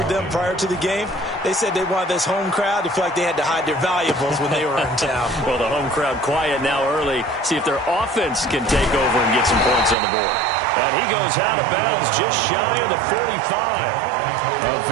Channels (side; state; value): left; drops out; at 10.0 s